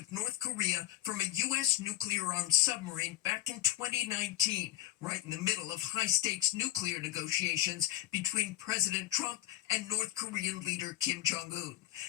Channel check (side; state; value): right; quieter; 15.2 dB